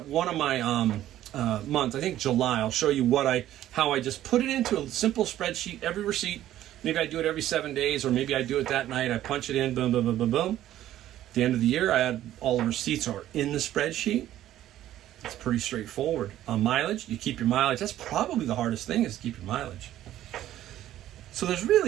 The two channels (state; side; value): quieter; left; 13.0 dB